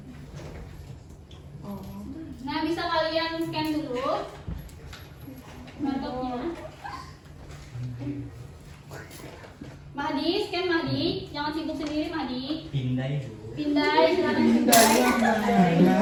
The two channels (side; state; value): both; identical; correlation 1.00